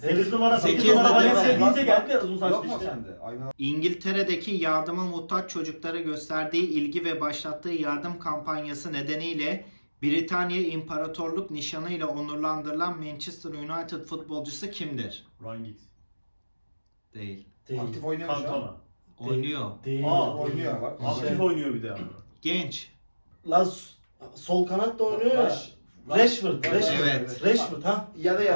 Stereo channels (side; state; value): both; inverted; correlation -1.00